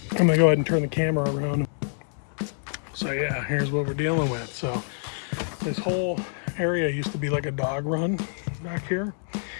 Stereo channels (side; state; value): right; silent; digital silence